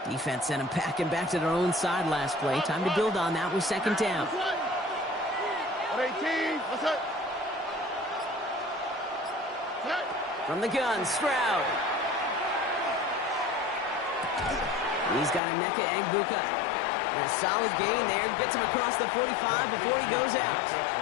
Defense sent him packing back to their own side last play. Time to build on that with second down. 118. What's that? From the gun, Stroud. He's got Emeka Egbuka. And a solid gain there. Gets him across the 45 before he goes out.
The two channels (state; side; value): drops out; right; at 15.4 s